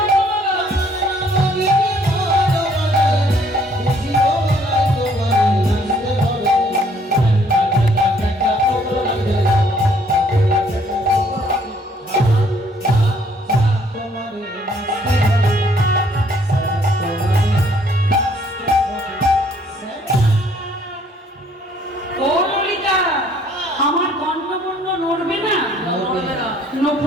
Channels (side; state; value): both; normal; correlation 0.63